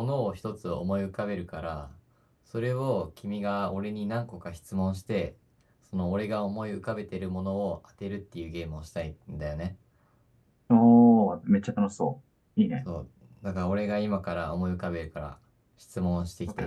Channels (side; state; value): both; identical; correlation 1.00